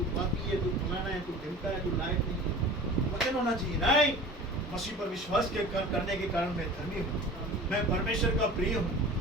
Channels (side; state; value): both; normal; correlation 0.39